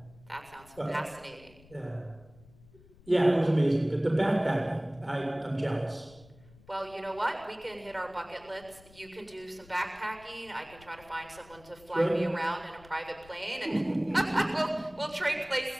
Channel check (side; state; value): left; noise; rumble, 24 dB below the sound